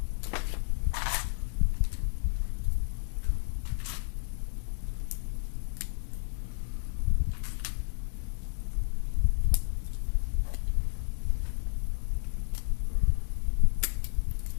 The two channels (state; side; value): silent; right; digital silence